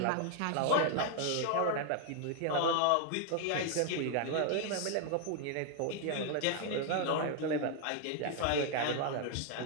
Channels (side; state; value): both; different; correlation 0.00